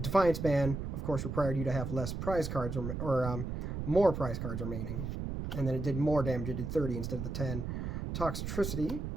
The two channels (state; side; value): noise; right; rumble, 4 dB below the sound